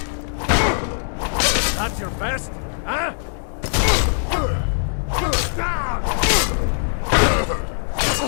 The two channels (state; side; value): silent; right; digital silence